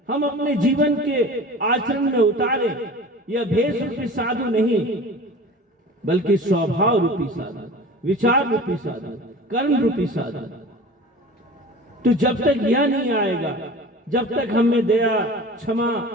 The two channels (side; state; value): both; normal; correlation 0.39